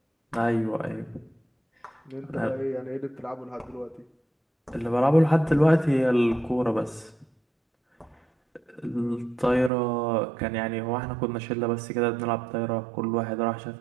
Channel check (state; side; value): drops out; left; at 9.7 s